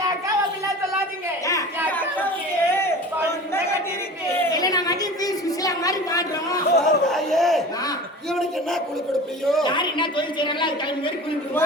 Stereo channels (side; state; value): both; normal; correlation 0.37